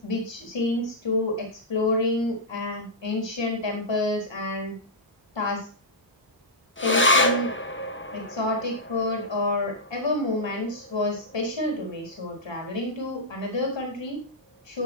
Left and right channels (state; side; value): normal; both; correlation -0.11